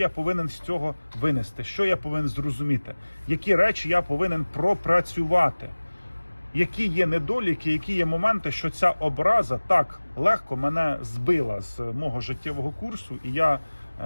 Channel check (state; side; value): inverted; both; correlation -1.00